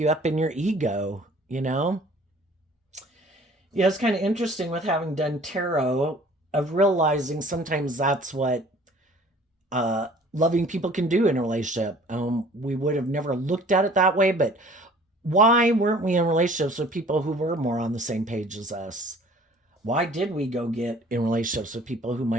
up in your ego? Yeah, it's kind of interesting with having done tarot of realizing sometimes that's what loving people can do in a relationship. We would have never looked at it that way, but why weren't we in relationships with people who were more on the same page as us? Why did we go get in relationships with people who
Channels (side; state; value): both; normal; correlation 0.51